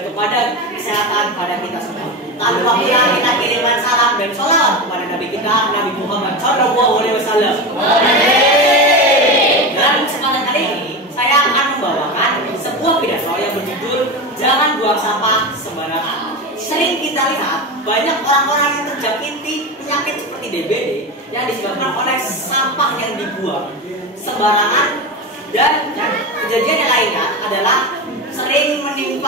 kepada kesehatan pada kita semua. Tanpa kira kita kirimkan salam dan sholawat kepada Nabi kita, Nabi Muhammad Shallallahu Alaihi Wasallam. Dalam kesempatan kali ini, saya akan membawakan sebuah pidato yang berjudul "Jangan Buang Sampah Sembarangan". Sering kita lihat banyak orang-orang yang terjangkiti penyakit seperti DBD yang disebabkan oleh sampah yang dibuang sembarangan, dan kejadian yang lainnya adalah sering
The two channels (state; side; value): normal; both; correlation 0.21